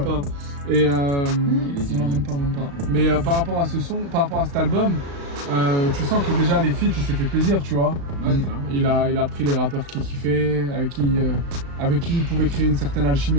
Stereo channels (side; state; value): left; late; 35 ms